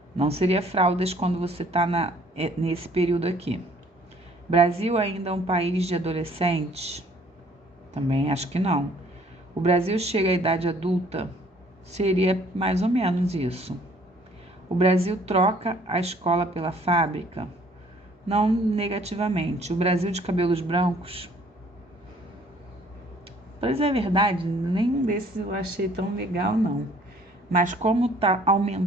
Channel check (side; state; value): both; normal; correlation 0.58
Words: Não seria fraldas quando você está nesse período aqui. Brasil ainda é um país de adolescentes? Também acho que não. O Brasil chega à idade adulta? Seria mais ou menos isso. O Brasil troca a escola pela fábrica? Não negativamente. O Brasil de cabelos brancos? Pois é verdade, nenhum desses eu achei tão legal, não. Mas como tá